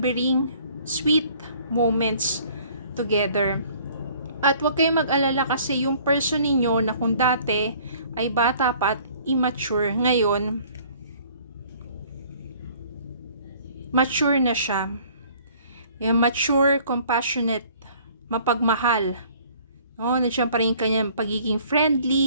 sweet moments together. At huwag kayong mag-alala kasi yung person ninyo na kung dati ay bata pa at immature, ngayon, mature na siya. Yung mature, compassionate, mapagmahal. No, nandiyan pa rin kanyang pagiging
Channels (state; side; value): inverted; both; correlation -0.55